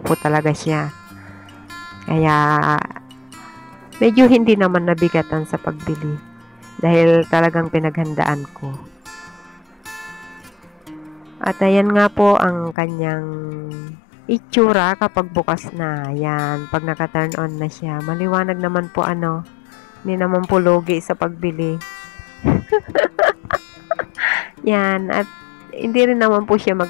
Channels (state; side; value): drops out; right; at 12.8 s